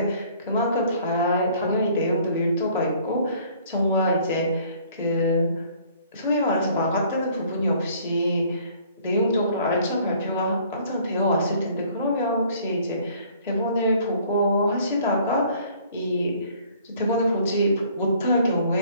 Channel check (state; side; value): inverted; both; correlation -0.57